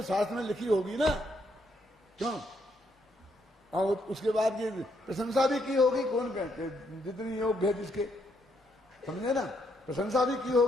शास्त्र में लिखी होगी ना, क्यों? और उसके बाद ये प्रशंसा भी की होगी, कौन कहते जितनी योग्य है जिसके, समझे ना, प्रशंसा भी की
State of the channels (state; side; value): normal; both; correlation 0.74